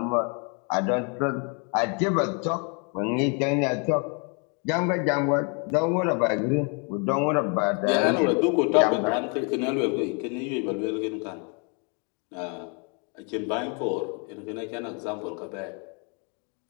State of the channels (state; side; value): quieter; right; 36.6 dB